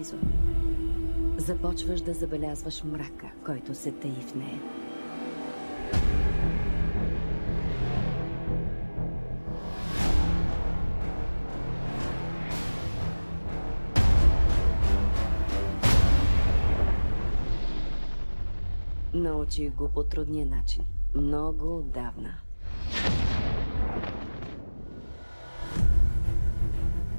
започваш да забелязваш мрака, който се таи в нея. Научих го по трудния начин. Много отдавна.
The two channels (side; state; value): both; inverted; correlation -1.00